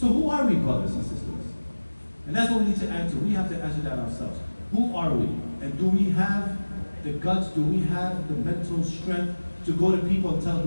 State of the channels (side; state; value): both; inverted; correlation -1.00